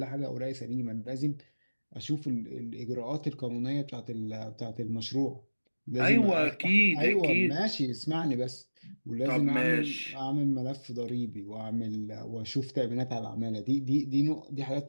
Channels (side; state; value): both; inverted; correlation -1.00